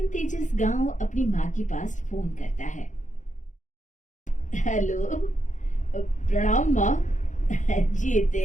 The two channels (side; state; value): right; late; 0.36 ms